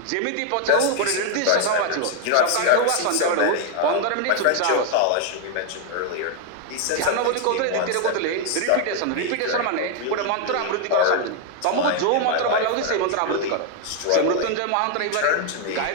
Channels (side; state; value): both; different; correlation 0.00